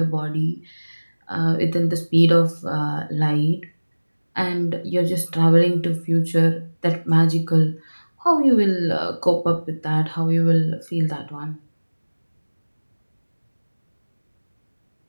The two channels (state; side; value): inverted; both; correlation -1.00